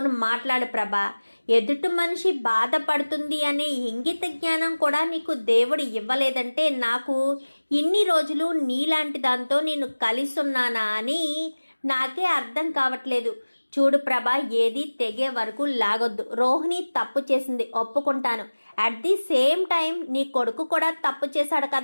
మాట్లాడు ప్రభా. ఎదుటి మనిషి బాధపడుతుంది అనే ఇంగిత జ్ఞానం కూడా నీకు దేవుడు ఇవ్వలేదంటే నాకు ఇన్ని రోజులు నీలాంటి దాంతో నేను కలిసి ఉన్నానా అని నాకే అర్థం కావట్లేదు. చూడు ప్రభా, ఏది తెగే వరకు లాగొద్దు. రోహిణి తప్పు చేసింది, ఒప్పుకుంటాను. అట్ ది సేమ్ టైం నీ కొడుకు కూడా తప్పు చేశాడు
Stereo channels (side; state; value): both; inverted; correlation -1.00